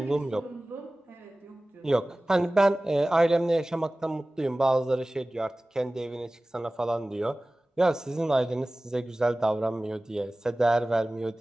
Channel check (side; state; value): both; normal; correlation 0.98